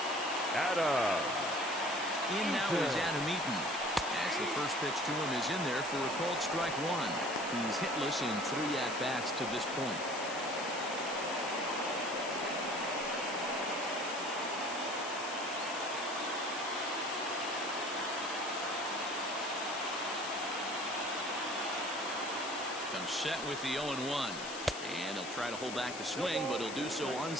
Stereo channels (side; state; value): left; noise; hiss, 10 dB below the sound